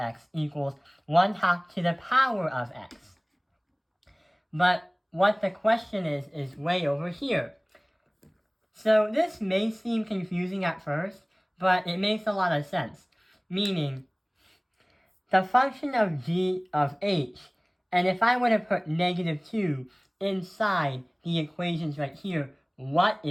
equals 1/2 to the power of x. But what the question is way over here. So this may seem confusing at first, but it makes a lot of sense. Meaning, the function of g of h, and if I were to put negative 2 inside the equations right here, what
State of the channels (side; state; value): both; identical; correlation 1.00